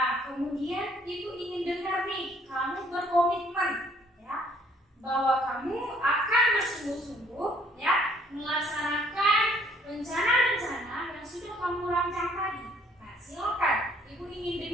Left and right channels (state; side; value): normal; both; correlation 0.62